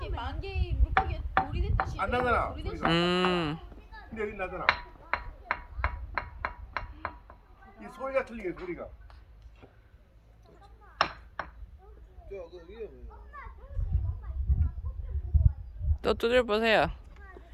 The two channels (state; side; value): identical; both; correlation 1.00